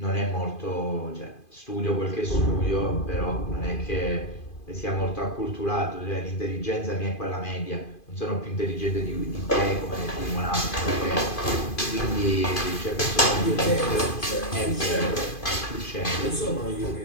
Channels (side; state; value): right; late; 2.5 ms